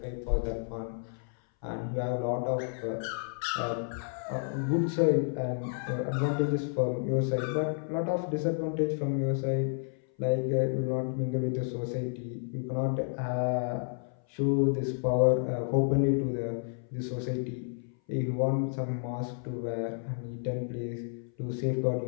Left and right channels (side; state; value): right; silent; 57 dB below the other